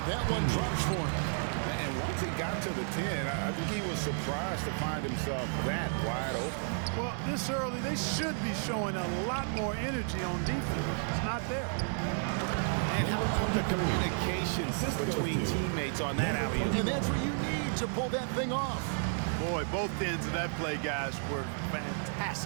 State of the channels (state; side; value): silent; left; 56 dB below the other